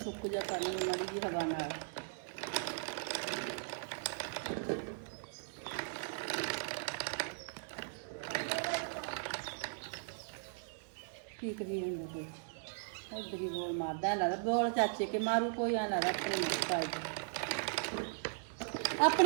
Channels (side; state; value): left; silent; 52 dB below the other